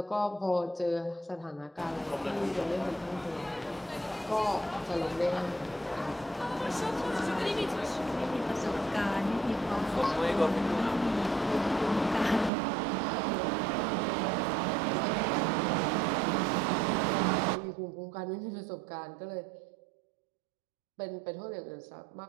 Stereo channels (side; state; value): left; drops out; at 12.5 s